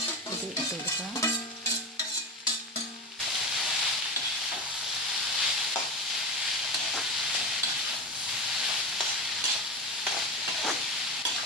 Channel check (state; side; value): normal; both; correlation 0.23